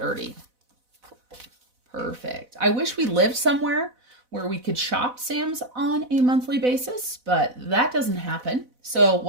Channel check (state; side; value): late; left; 4.0 ms